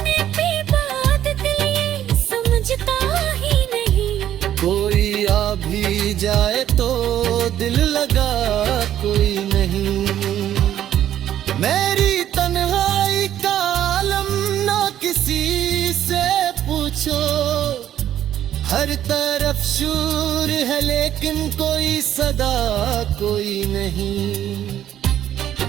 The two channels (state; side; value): quieter; left; 11.3 dB